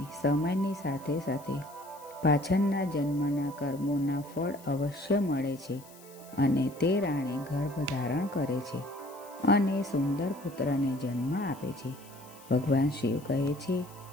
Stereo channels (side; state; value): left; noise; hiss, 22 dB below the sound